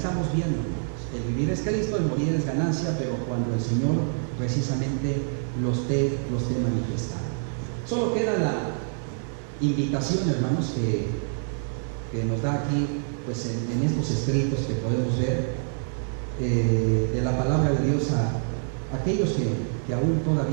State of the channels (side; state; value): left; silent; digital silence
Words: viendo, hermanos, el vivir es Cristo, el morir es ganancia, pero cuando el Señor precisamente los esté manifestando. Solo queda la invitación, hermanos, que nos da aquí pues en estos escritos que podemos ver de la palabra de Dios